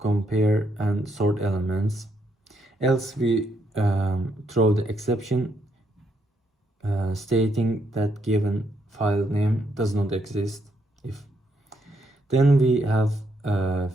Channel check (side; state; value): both; normal; correlation 0.76